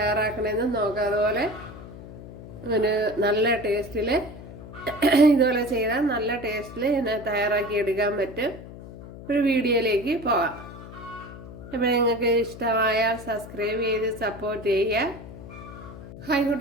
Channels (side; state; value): left; noise; hum, 14 dB below the sound